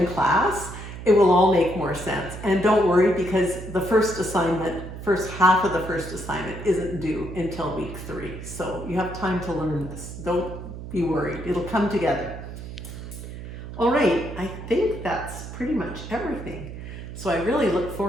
class, it will all make more sense. And don't worry, because the first half of the first assignment isn't due until week 3. So you have time to learn this. Don't be worried. It'll come together. All right, I think that's pretty much everything. So I really look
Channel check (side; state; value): right; noise; hum, 10 dB below the sound